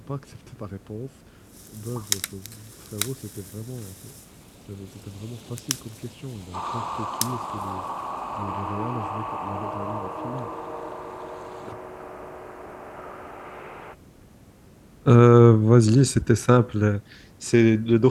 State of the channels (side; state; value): both; identical; correlation 1.00